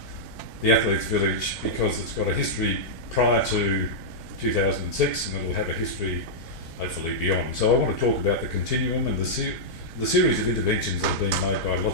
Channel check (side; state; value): right; late; 4.4 ms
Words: the Athletes Village because it's got a history prior to 2006 and it'll have a history hopefully beyond. So I want to talk about the continuum and the series of interventions that have been made by